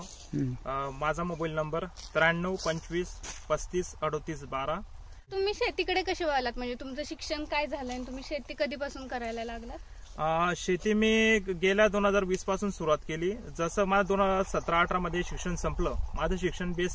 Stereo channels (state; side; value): identical; both; correlation 1.00